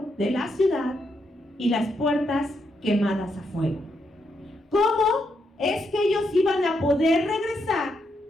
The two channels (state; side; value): normal; both; correlation 0.80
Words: de la ciudad y las puertas quemadas a fuego. ¿Cómo es que ellos iban a poder regresar